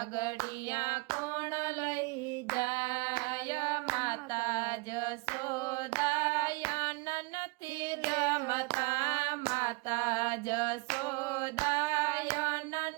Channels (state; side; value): quieter; left; 26.6 dB